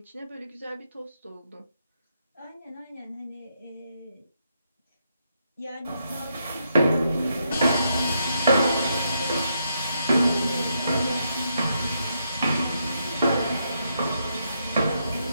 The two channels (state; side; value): inverted; both; correlation -0.79